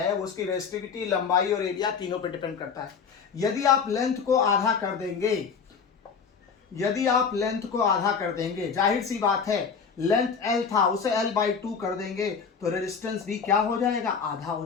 उसकी रेजिस्टिविटी, लंबाई और एरिया तीनों पे डिपेंड करता है। यदि आप लेंथ को आधा कर देंगे, यदि आप लेंथ को आधा कर देंगे, जाहिर सी बात है लेंथ L था उसे L/2 कर देंगे तो रेजिस्टेंस भी क्या हो जाएगा, आधा हो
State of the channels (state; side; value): quieter; right; 6.0 dB